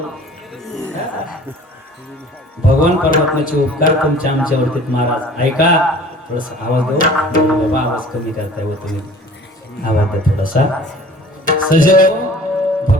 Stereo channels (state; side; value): normal; both; correlation 0.47